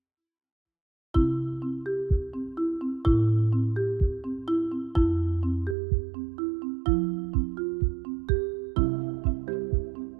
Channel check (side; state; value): left; drops out; at 5.8 s